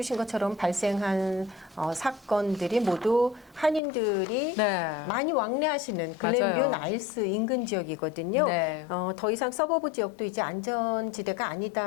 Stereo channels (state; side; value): drops out; right; at 3.8 s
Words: 것처럼 발생한 사건들이 모두 한인들이 많이 왕래하시는 글렌뷰 나일스 인근 지역이거든요. 더 이상 서버브 지역도 이제 안전지대가